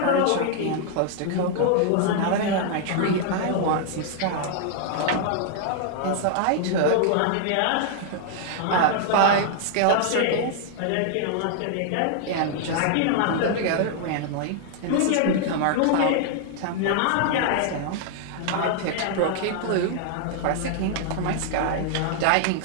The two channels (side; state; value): both; different; correlation -0.01